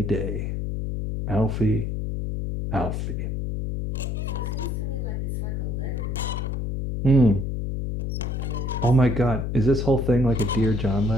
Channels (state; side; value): noise; left; hum, 2 dB below the sound